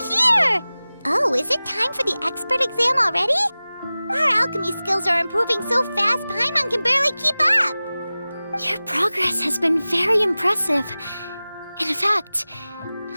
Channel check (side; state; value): both; inverted; correlation -0.97